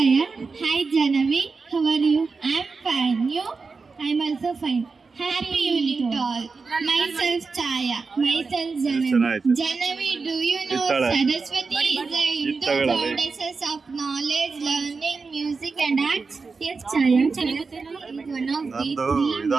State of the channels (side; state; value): left; quieter; 4.5 dB